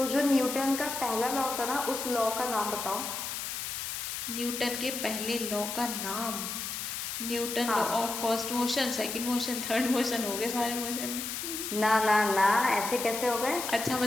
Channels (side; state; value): left; noise; hiss, 5 dB below the sound